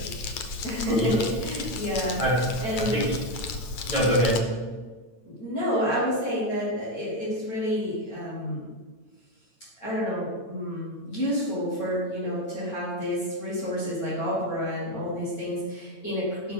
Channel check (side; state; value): right; late; 8.9 ms